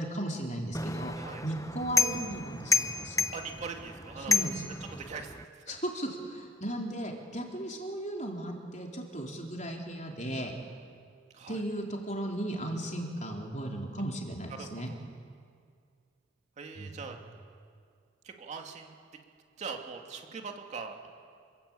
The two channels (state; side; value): normal; both; correlation 0.56